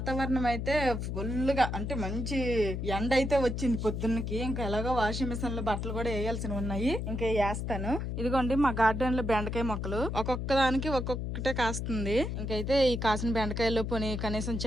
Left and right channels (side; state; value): left; noise; hum, 3 dB below the sound